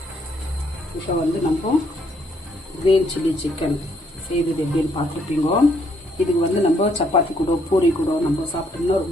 இப்போ வந்து நம்ம கிரீன் சில்லி சிக்கன் செய்வது எப்படின்னு பார்த்துருப்பீங்க. இதுக்கு வந்து நம்ம சப்பாத்தி கூட பூரி கூட நம்ம சாப்பிட்டோம்னா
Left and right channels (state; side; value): normal; both; correlation 0.69